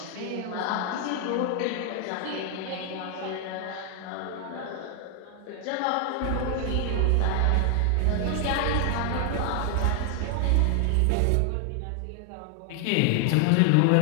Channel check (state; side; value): different; both; correlation 0.00